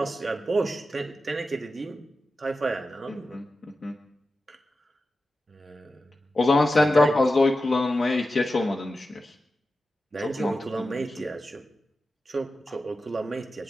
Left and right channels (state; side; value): normal; both; correlation 0.92